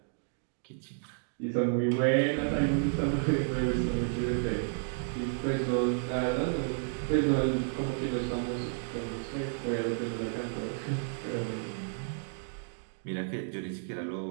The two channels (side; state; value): left; silent; digital silence